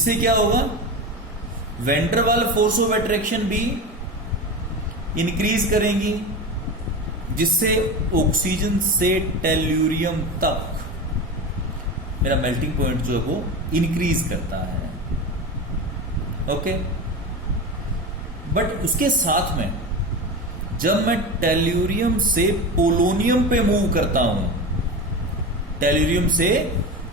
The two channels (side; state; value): both; normal; correlation 0.25